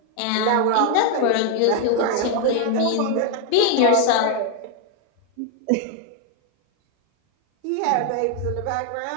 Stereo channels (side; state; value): both; different; correlation 0.00